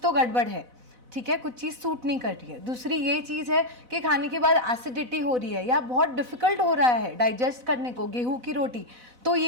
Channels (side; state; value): left; late; 4.0 ms